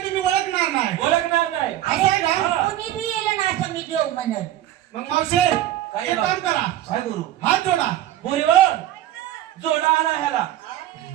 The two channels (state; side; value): quieter; left; 13.4 dB